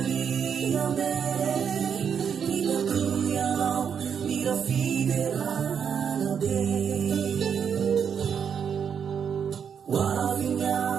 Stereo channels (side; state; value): left; quieter; 7.4 dB